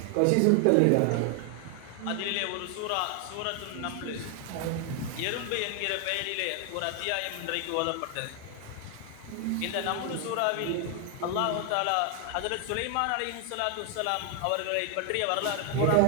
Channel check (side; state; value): both; different; correlation 0.00